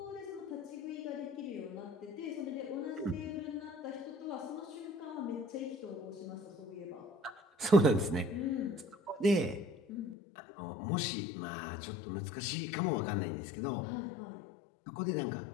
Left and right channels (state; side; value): drops out; right; at 10.2 s